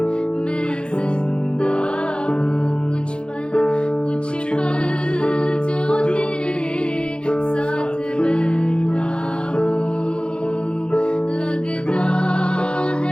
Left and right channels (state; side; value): late; right; 0.055 ms